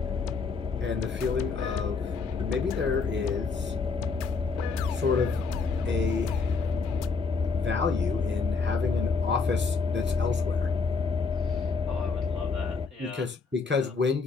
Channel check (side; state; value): right; quieter; 4.6 dB